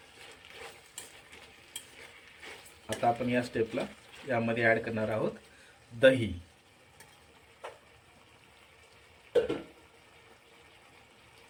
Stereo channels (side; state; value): both; identical; correlation 1.00